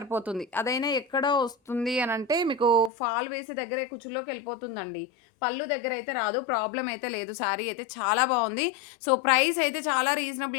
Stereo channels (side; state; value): right; drops out; at 2.9 s